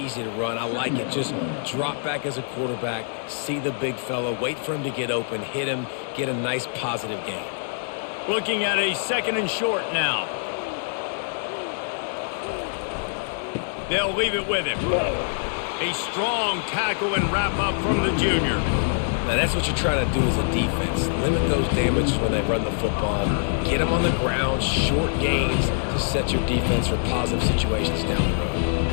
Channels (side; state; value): right; silent; digital silence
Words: to run. I like it. Just drop back as a quarterback, see the big fella, wait for him to get open, hit him, get a nice positive gain. Looking at a second and short now. They'll leave it with him. A strong tackle and wrap up from the junior. Now, that's what you're trying to do as a defense. Limit those damages when they run the football. Get them on the ground, short gains to set your defense for positive situations down the road.